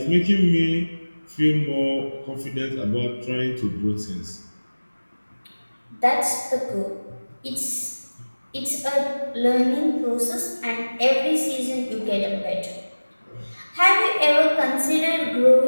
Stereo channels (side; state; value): both; inverted; correlation -1.00